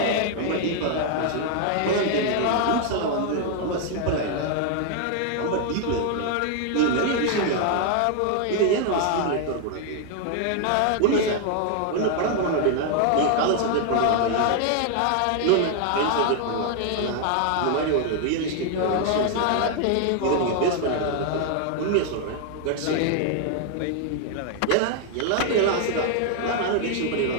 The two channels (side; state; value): both; different; correlation 0.00